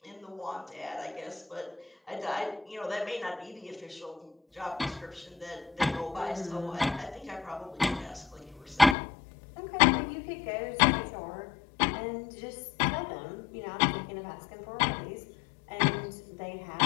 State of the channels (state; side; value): drops out; right; at 9.0 s